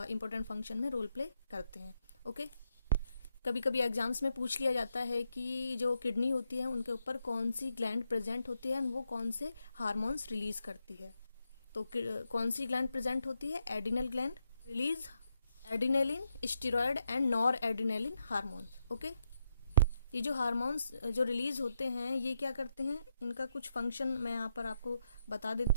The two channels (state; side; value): inverted; both; correlation -0.81